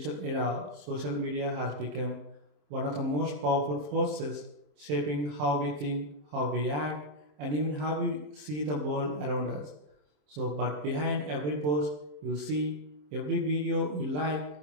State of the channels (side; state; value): left; late; 27 ms